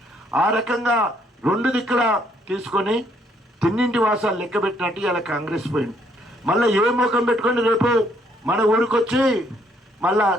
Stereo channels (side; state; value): both; normal; correlation 0.68